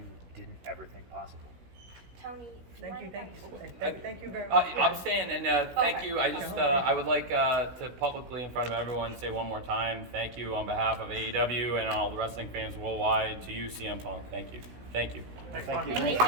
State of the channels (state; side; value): late; left; 16 ms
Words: didn't ever think possible. Tony, Thank you very much. I'm staying, and thank you. I just I would like to publicly, in front of everyone, say one more time, thank you on behalf of AEW and all the wrestling fans worldwide to you, CM Punk. Thank you. Thank you. Thank you. Just